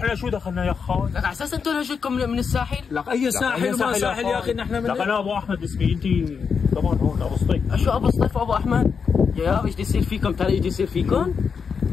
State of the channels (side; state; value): right; quieter; 6.0 dB